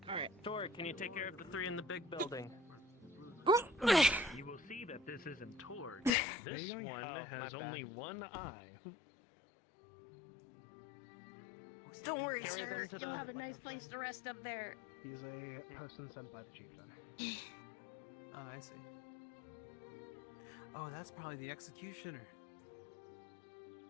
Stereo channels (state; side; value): drops out; right; at 6.1 s